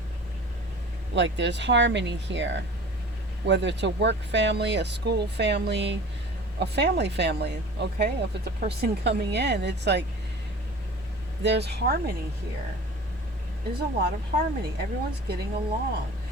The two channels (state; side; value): normal; both; correlation 0.41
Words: like, there's harmony here. Whether it's a work family, a school family, a family, okay? If it's a person coming in, it's like there's harmony here. There's a lot of harmony. Everyone's getting along.